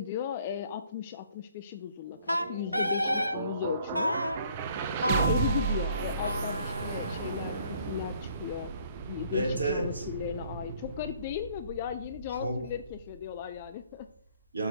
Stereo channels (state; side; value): inverted; both; correlation -0.60